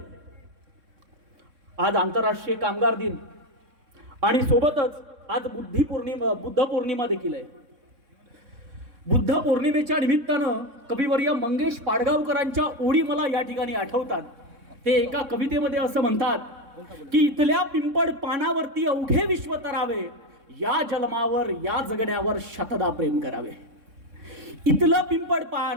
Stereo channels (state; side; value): late; left; 3.6 ms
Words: आज आंतरराष्ट्रीय कामगार दिन आणि सोबतच आज बुद्ध पौर्णिमा देखील आहे. बुद्ध पौर्णिमेच्या निमित्तानं कविवर्य मंगेश पाडगावकरांच्या ओळी मला या ठिकाणी आठवतात. ते एका कवितेमध्ये असं म्हणतात की इथल्या पिंपळ पानावरती अवघे विश्व तरावे, या जन्मावर या जगण्यावर शतदा प्रेम करावे. इथलं